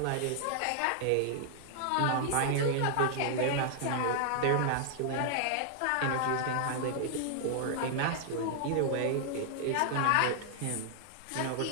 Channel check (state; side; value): different; both; correlation 0.00